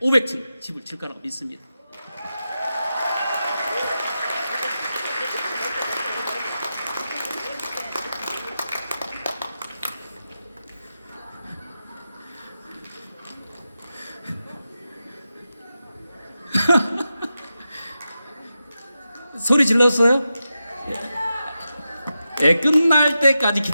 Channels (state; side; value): inverted; both; correlation -0.90